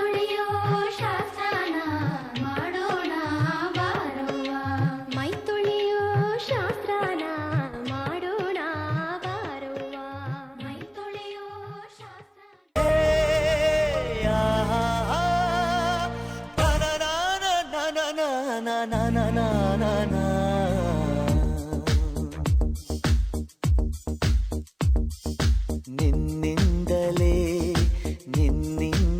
ಶಾಸ್ತ್ರನ ಮಾಡೋಣ ಬಾರವ್ವ ಮೈ ತೊಳೆಯೋ ಶಾಸ್ತ್ರನ ಮಾಡೋಣ ಬಾರವ್ವ ಮೈ ತೊಳೆಯೋ ಶಾಸ್ತ್ರ ನಿನ್ನಿಂದಲೇ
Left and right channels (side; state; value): both; identical; correlation 1.00